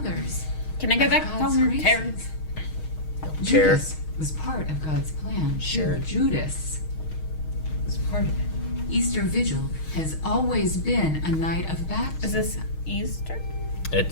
Can I go of back God's home, graces? Terrence? Chair. Judas was part of God's plan. too. Sure. Judas was part of it. Easter Vigil has always been a night of Is baptism. this Easter?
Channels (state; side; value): late; right; 6.4 ms